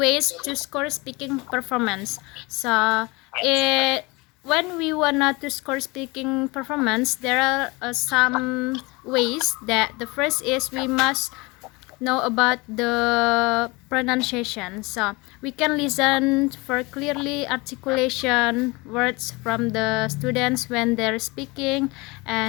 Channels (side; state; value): right; quieter; 25.0 dB